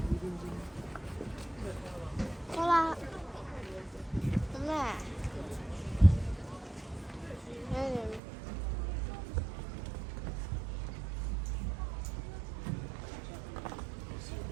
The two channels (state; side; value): drops out; left; at 8.2 s